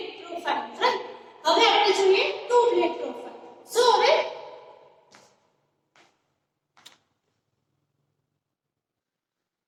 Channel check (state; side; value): identical; both; correlation 1.00